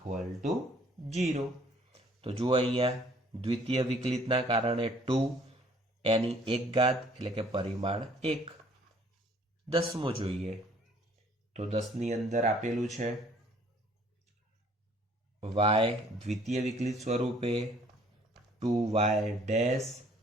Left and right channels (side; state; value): both; normal; correlation 0.58